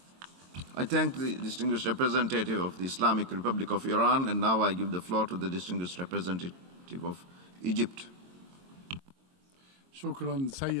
I thank the distinguished representative of the Islamic Republic of Iran, and now I give the floor to the distinguished representative of Egypt. شكرا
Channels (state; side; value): late; left; 22 ms